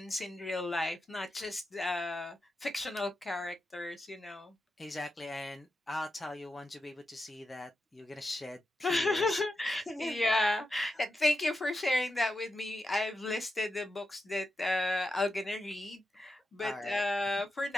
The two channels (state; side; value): normal; both; correlation 0.88